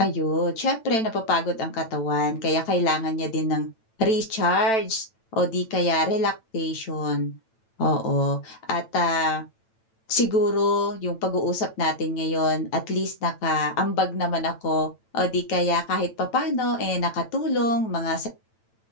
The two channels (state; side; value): late; right; 9.0 ms